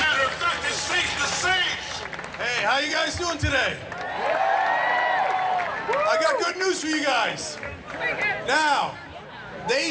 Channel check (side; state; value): both; identical; correlation 1.00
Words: of fact, it's safe to say. Hey, how you guys doing today? I got good news for you guys. Now,